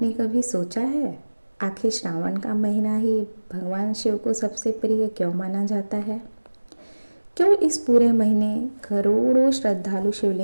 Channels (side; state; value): both; inverted; correlation -1.00